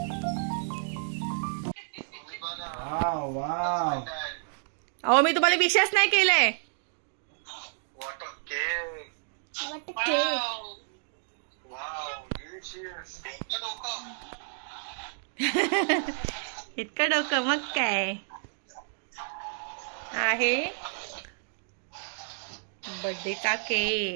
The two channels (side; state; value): left; silent; digital silence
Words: अहो मी तुम्हाला विशेष नाही केलंय. इतकं डोकं मग काय आहे. बर्थडे चा